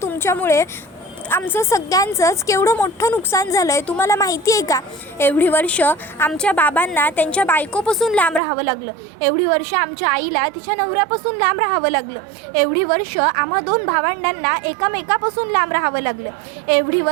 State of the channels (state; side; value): drops out; left; at 8.4 s